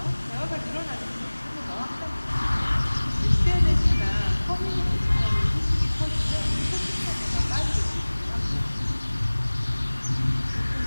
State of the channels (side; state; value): both; inverted; correlation -1.00